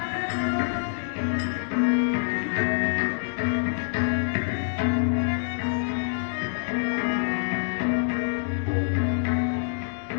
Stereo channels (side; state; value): right; silent; digital silence